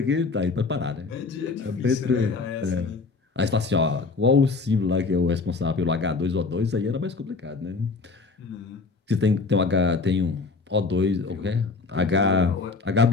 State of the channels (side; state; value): right; quieter; 4.1 dB